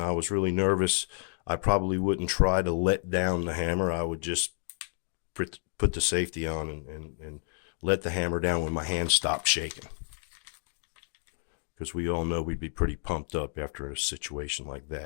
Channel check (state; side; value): silent; right; 58 dB below the other